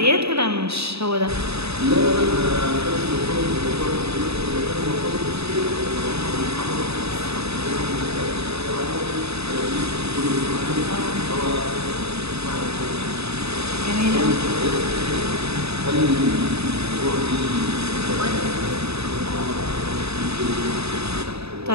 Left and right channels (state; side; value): late; left; 0.79 ms